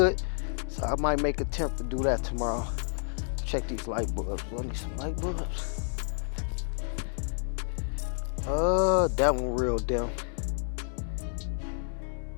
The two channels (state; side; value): silent; right; digital silence